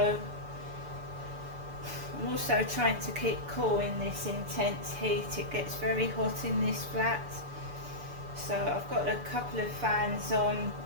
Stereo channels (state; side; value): late; left; 6.9 ms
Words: I'm also trying to keep cool in this intense heat. It gets very hot in this flat, so I've got a couple of fans on.